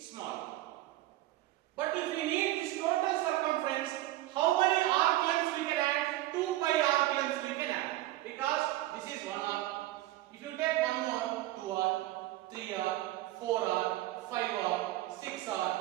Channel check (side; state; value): left; quieter; 16.3 dB